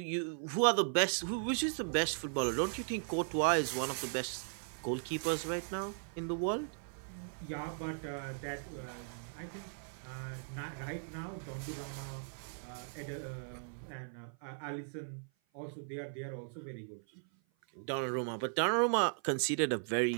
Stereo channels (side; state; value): left; silent; 53 dB below the other